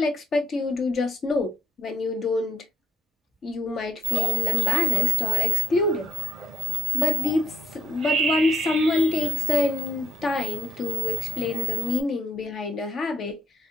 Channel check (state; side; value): normal; both; correlation 0.75